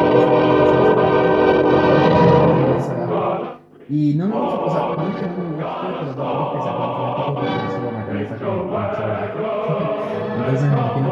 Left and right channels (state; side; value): identical; both; correlation 1.00